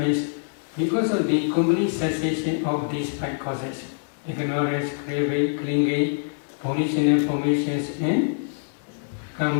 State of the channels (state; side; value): silent; right; 61 dB below the other